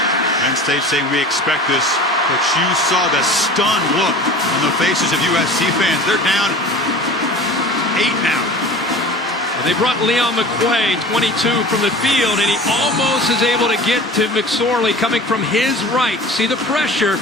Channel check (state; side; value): normal; both; correlation 0.39